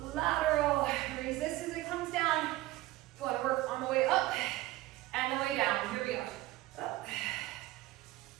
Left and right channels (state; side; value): quieter; left; 17.3 dB